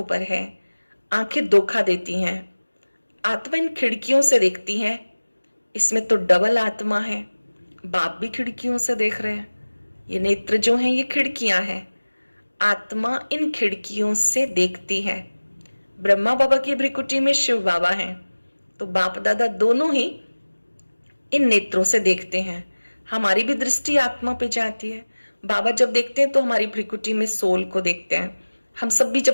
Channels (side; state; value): both; inverted; correlation -1.00